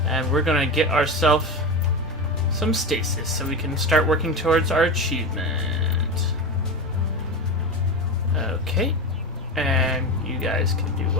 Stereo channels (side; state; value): both; normal; correlation 0.22